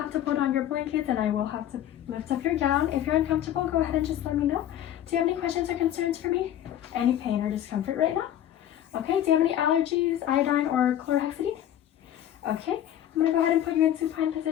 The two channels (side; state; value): right; quieter; 11.4 dB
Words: to put on your blankets and I will have to lift up your gown. If you're uncomfortable, go ahead and just let me know. Do you have any questions or concerns for me? Any pain or discomfort right now? Okay, do you have any allergies, iodine or chlorhexidine? Okay, I'm gonna go ahead and put you in supine